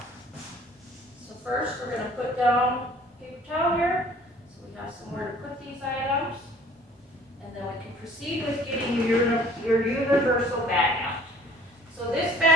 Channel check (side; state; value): both; normal; correlation 0.53